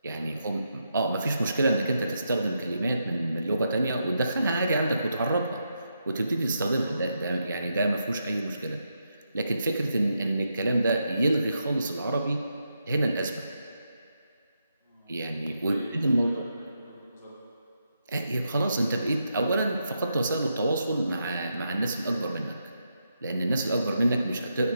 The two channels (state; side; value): inverted; both; correlation -0.83